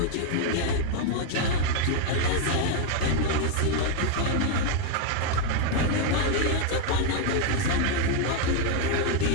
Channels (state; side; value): different; both; correlation 0.01